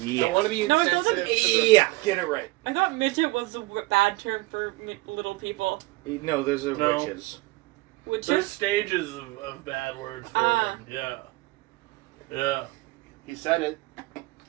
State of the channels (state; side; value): quieter; left; 21.5 dB